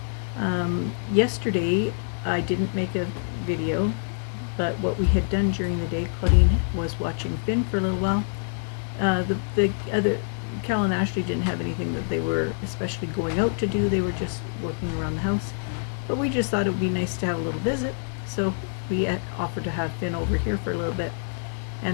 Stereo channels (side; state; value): right; silent; digital silence